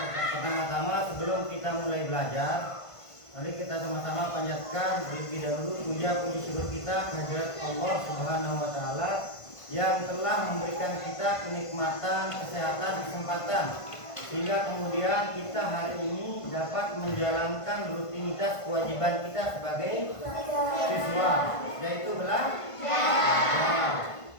sebelum kita mulai belajar, mari kita sama-sama panjatkan terlebih dahulu puji syukur kita kehadirat Allah Subhanahu wa taala yang telah memberikan kita kenikmatan, kesehatan, kesempatan sehingga kemudian kita hari ini dapat menjalankan rutinitas kewajiban kita sebagai siswa, yaitu belajar.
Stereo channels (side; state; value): right; late; 1.5 ms